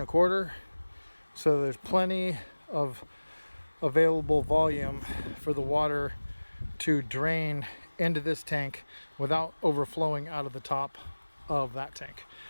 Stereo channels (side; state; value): both; inverted; correlation -1.00